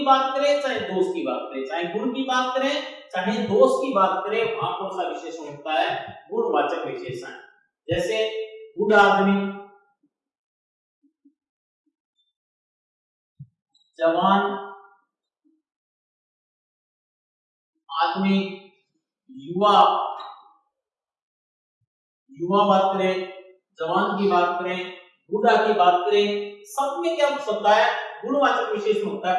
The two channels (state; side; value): identical; both; correlation 1.00